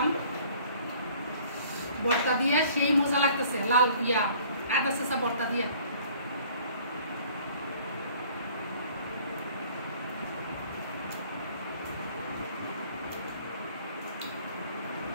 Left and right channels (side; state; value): both; inverted; correlation -0.54